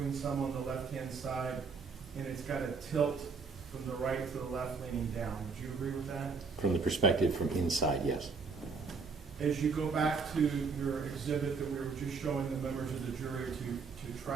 some on the left-hand side, and it's got a tilt from the right to the left leaning down. Would you agree with that? From the perspective from inside, yes. As you go back to your exhibit that we were just showing the members of the jury to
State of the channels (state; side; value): quieter; left; 4.9 dB